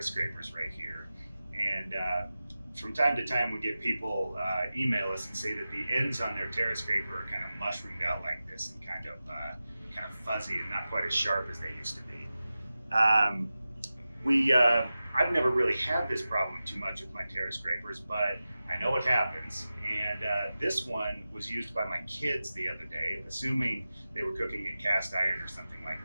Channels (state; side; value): inverted; both; correlation -0.95